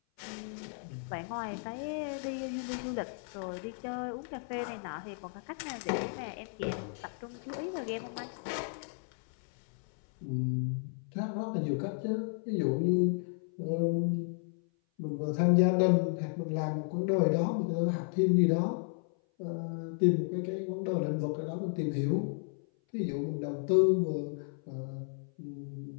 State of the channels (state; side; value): silent; right; 56 dB below the other